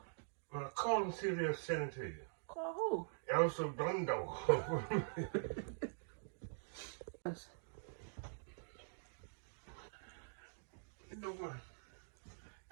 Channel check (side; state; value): left; silent; digital silence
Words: Well, call them and see if they'll send it to you. Call who? El Segundo. You know what?